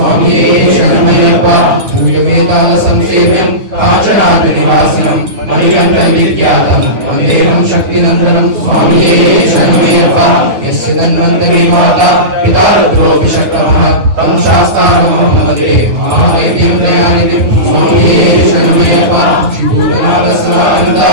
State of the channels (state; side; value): late; left; 9.3 ms